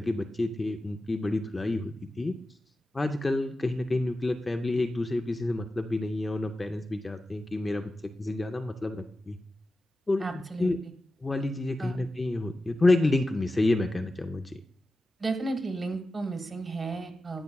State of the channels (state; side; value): normal; both; correlation 0.93